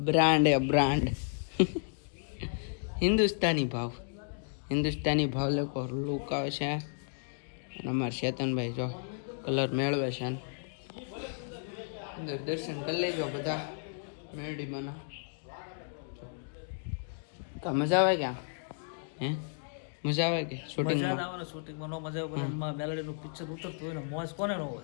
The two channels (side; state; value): right; silent; digital silence